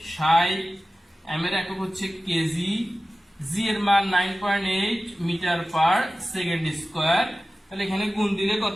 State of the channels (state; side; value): normal; both; correlation 0.95